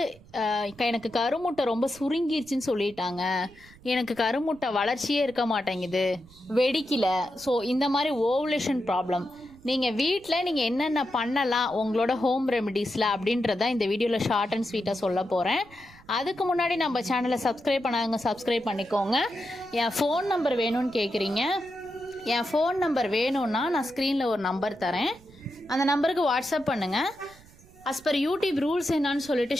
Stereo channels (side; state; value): right; noise; rumble, 24 dB below the sound